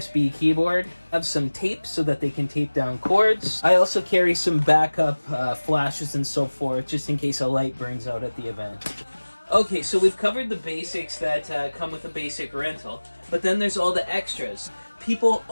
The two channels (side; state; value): both; inverted; correlation -1.00